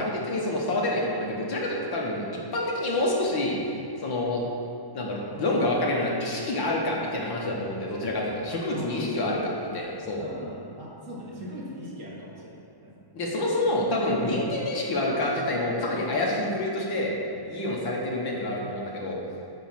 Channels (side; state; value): right; late; 1.1 ms